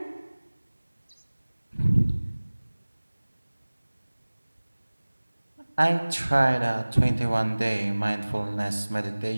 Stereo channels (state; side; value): inverted; both; correlation -1.00